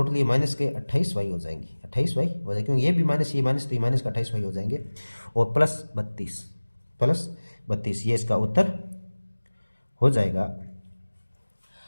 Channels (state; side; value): inverted; both; correlation -1.00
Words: ये माइनस के 28y हो जाएंगे, 28y हो जाएगी, क्योंकि ये भी माइनस ये माइनस, तो ये माइनस का 28y हो जाएंगे, और प्लस 32 ये इसका उत्तर हो जाएगा।